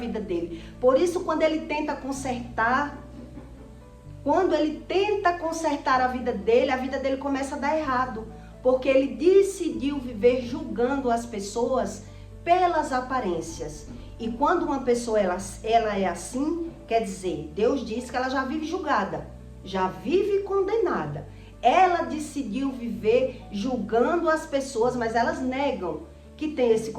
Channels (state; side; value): identical; both; correlation 1.00